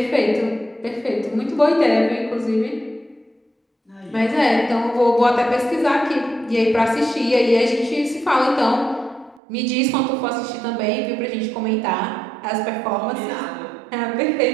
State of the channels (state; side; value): drops out; left; at 9.4 s